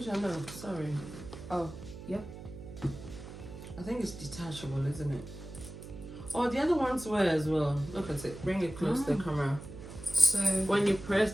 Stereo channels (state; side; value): noise; right; hum, 13 dB below the sound